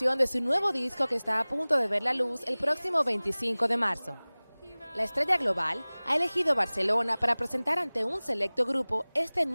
de su nuevo disco que está a punto de ver la luz el próximo 25 de marzo. La estrella global ha elegido Barcelona para presentar ante un selecto grupo este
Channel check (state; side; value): inverted; both; correlation -1.00